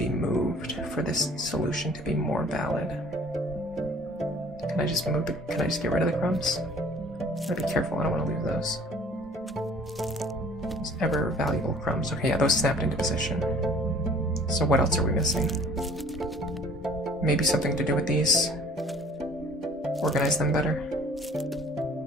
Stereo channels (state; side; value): normal; both; correlation 0.52